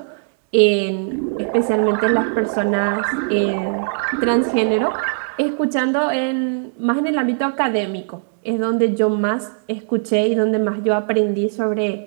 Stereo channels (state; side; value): silent; left; digital silence